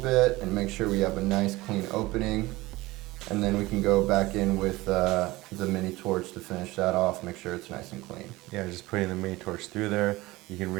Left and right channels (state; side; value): quieter; left; 19.7 dB